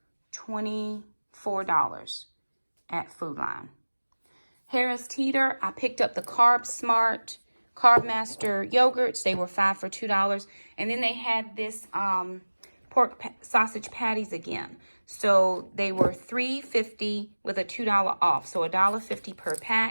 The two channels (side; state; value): both; inverted; correlation -1.00